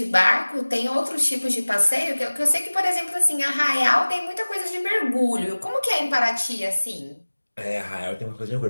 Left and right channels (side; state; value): both; inverted; correlation -1.00